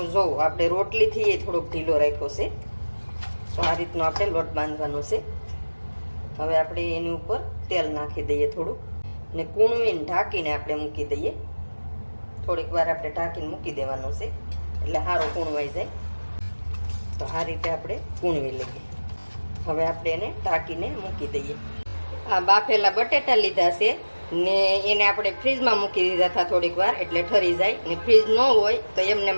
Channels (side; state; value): both; inverted; correlation -1.00